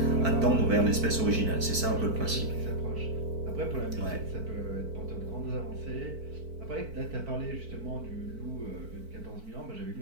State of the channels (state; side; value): late; left; 4.5 ms